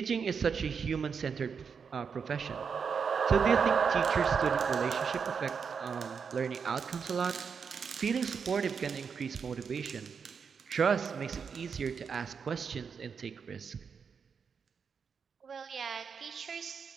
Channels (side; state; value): left; quieter; 6.2 dB